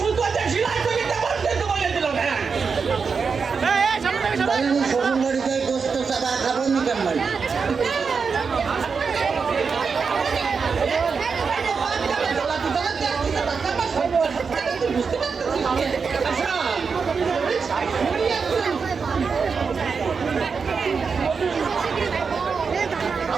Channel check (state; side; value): quieter; left; 5.4 dB